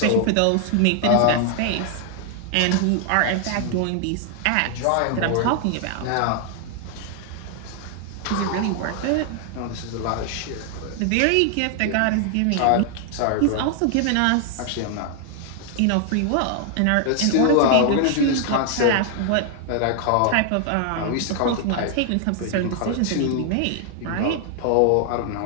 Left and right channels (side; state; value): both; different; correlation 0.00